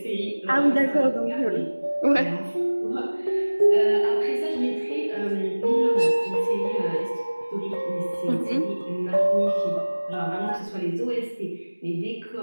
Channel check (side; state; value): both; inverted; correlation -1.00